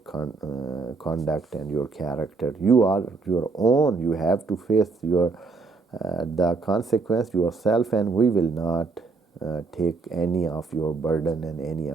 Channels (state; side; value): quieter; left; 4.2 dB